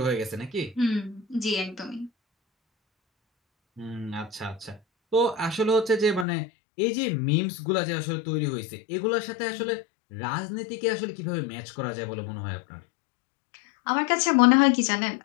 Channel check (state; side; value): drops out; right; at 6.2 s